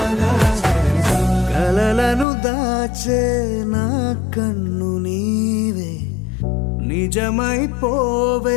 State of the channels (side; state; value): right; drops out; at 2.2 s